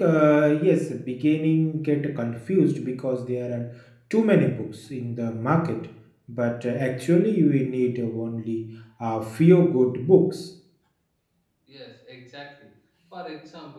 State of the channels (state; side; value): identical; both; correlation 1.00